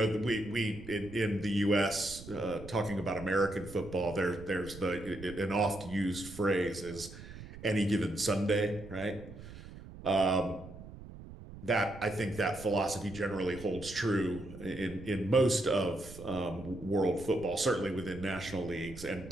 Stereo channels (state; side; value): noise; right; rumble, 15 dB below the sound